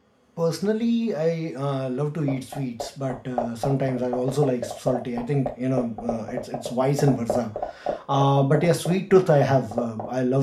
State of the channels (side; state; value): both; identical; correlation 1.00